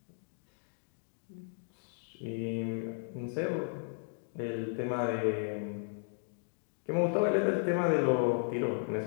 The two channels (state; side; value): silent; right; digital silence